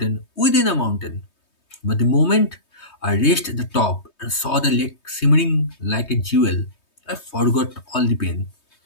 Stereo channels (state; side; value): late; right; 3.2 ms